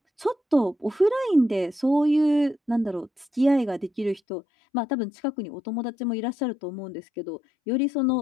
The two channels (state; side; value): drops out; right; at 4.2 s